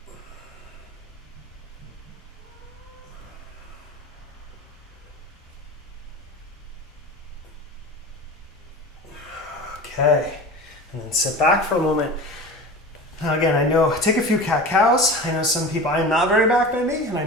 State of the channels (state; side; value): normal; both; correlation 0.33